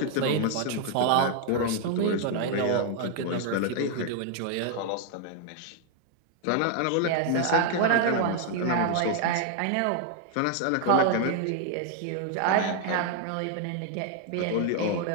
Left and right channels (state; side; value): different; both; correlation 0.00